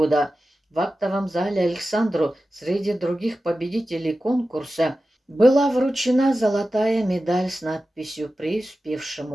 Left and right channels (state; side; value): normal; both; correlation 0.94